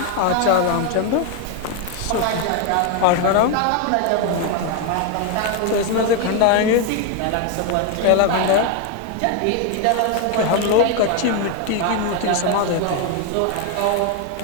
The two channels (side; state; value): both; different; correlation 0.01